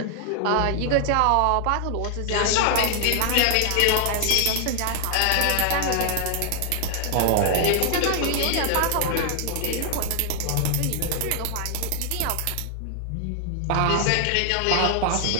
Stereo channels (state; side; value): different; both; correlation 0.00